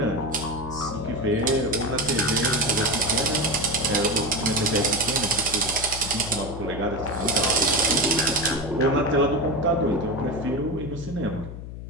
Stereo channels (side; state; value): left; noise; hum, 10 dB below the sound